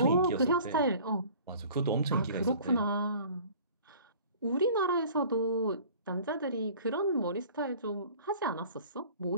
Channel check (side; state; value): both; inverted; correlation -0.47